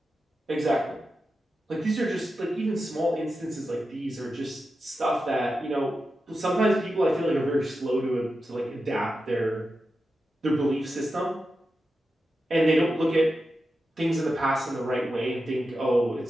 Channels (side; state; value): both; normal; correlation 0.90